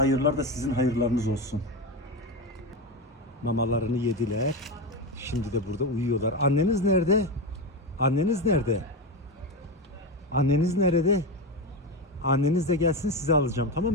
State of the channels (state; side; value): normal; both; correlation 0.16